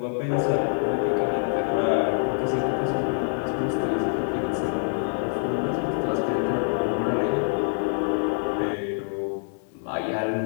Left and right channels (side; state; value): right; silent; 61 dB below the other